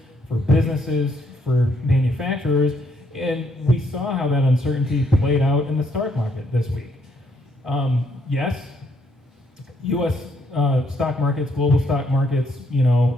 for businesses, for manufacturers. And we saw how that uncertainty played out in the stock market this week. Yes, U.S. Stock markets, global stock markets,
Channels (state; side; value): normal; both; correlation 0.72